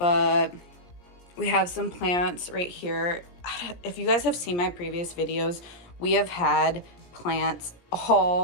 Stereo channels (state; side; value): late; right; 17 ms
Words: we have some plants right here. If you guys have seen my previous videos, we have had plants